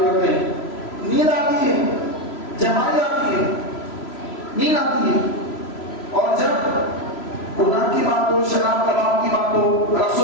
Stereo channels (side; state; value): right; late; 3.0 ms